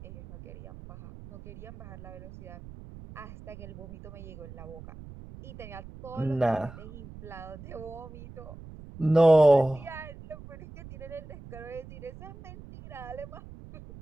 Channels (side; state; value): right; noise; rumble, 15 dB below the sound